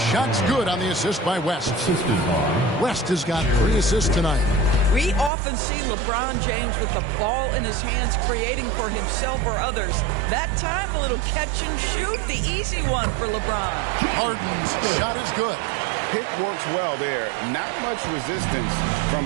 good on the assist by West. West has got 3 assists tonight. We often see LeBron James with the ball in his hands creating for himself or others. That time, a little catch and shoot, the easy one for LeBron. Harden's shot is good. Pick works well there. Not much resistance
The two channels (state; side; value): drops out; left; at 5.3 s